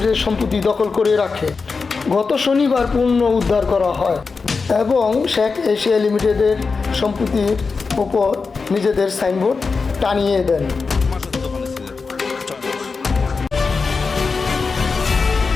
সম্পত্তি দখল করে রাখে। গত শনিবার পুনঃ উদ্ধার করা হয় এবং শেখ এশিয়া লিমিটেডের সম্পত্তির ওপর নিজেদের সাইনবোর্ড টানিয়ে দেন।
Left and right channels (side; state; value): right; quieter; 4.6 dB